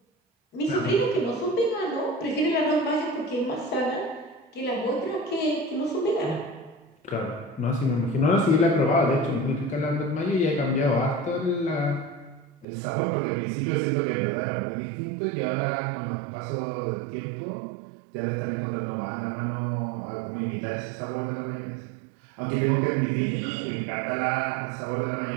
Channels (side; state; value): left; drops out; at 12.7 s